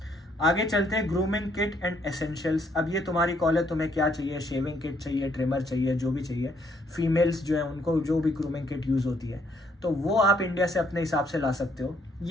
आगे चलते हैं ग्रूमिंग किट एंड एसेंशियल्स। अब ये तुम्हारी कॉल है, तुम्हें क्या चाहिए, शेविंग किट चाहिए, ट्रिमर चाहिए, जो भी चाहिए। फीमेल्स जो है उनको जो भी ग्रूमिंग किट यूज़ होती है तो वो आप इंडिया से अपने हिसाब से ला सकते हो।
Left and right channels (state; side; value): normal; both; correlation 0.69